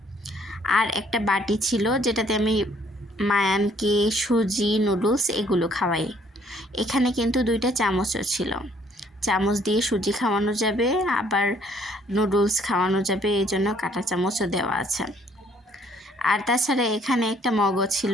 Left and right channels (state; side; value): normal; both; correlation 0.63